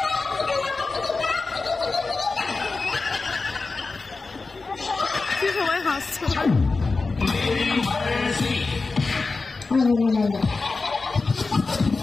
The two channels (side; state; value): right; quieter; 3.9 dB